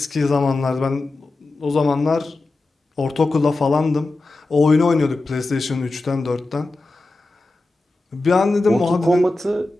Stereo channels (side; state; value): right; quieter; 3.1 dB